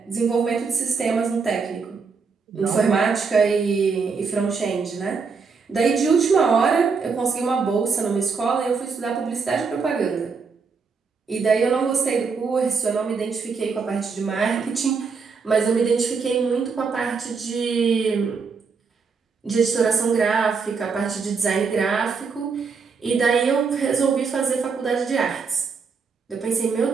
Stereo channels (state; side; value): quieter; left; 5.2 dB